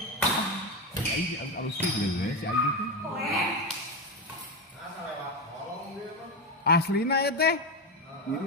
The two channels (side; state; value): both; normal; correlation 0.14